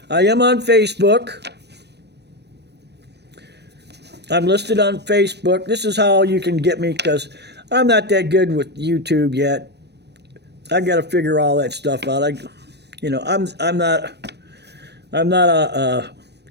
I am on Facebook. I'm listed on Facebook. This is how you can get me, because I'm not that good with YouTube yet. I got to figure all that stuff out. I'm not a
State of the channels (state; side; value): late; left; 0.49 ms